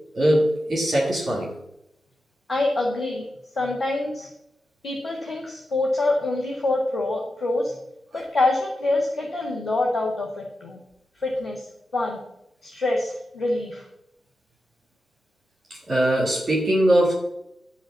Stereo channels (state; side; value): normal; both; correlation 0.89